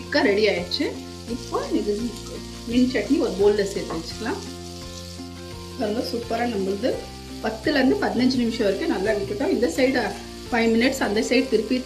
ரெடி ஆயிடுச்சு. இப்போ இது மீன் சட்னி ஒரு பவுலில் சேர்த்து வச்சுக்கலாம். பாருங்கள், சூப்பராக நம்மளுது 10லேருந்து 15 நிமிஷம் வரைக்கும் நல்லா விட்டுட்டோம். இந்த சைடு 5 மினிட்ஸ், அந்த சைடு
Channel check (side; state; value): both; identical; correlation 1.00